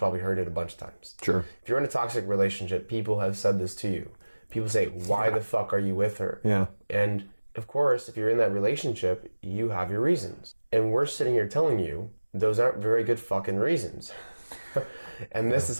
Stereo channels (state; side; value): inverted; both; correlation -1.00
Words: heard it a bunch of times. Sure. If you're in a toxic relationship, people have said this to you. People say, why the fuck are you with her? Yeah. And of course, if you're in that relationship, you have your reasons. And we're sitting here telling you those aren't very good fucking reasons. And this is